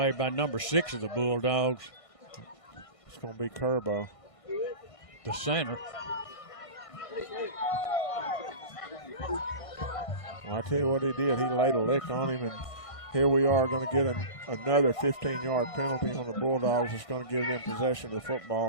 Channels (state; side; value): late; right; 1.5 ms